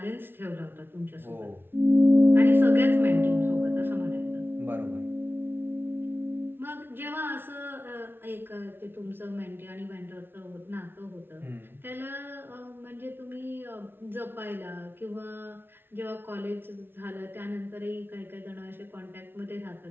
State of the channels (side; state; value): left; late; 0.11 ms